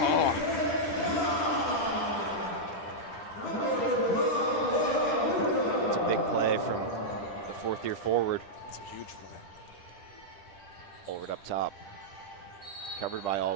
It's a big play from the 4th-year forward. It's a huge play. Allward up top. Covered by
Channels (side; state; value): right; late; 10 ms